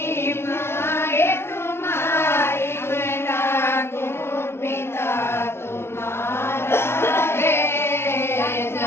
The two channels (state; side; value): late; right; 0.12 ms